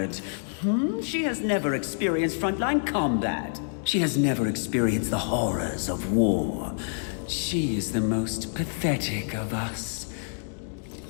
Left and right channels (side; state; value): right; silent; digital silence